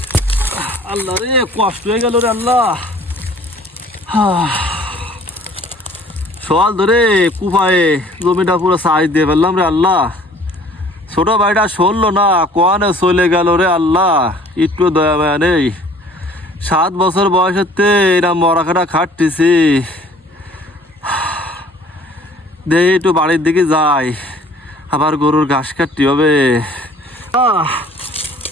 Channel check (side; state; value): both; normal; correlation 0.52